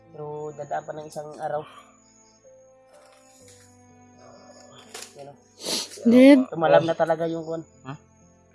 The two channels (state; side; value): identical; both; correlation 1.00